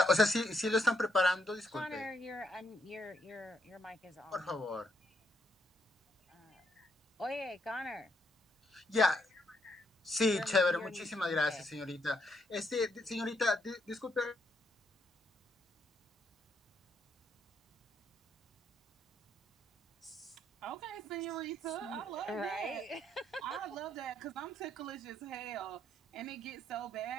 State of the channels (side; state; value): both; normal; correlation 0.75